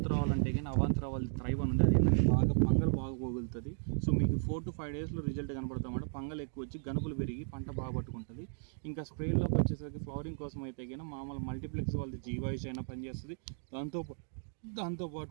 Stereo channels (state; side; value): silent; left; digital silence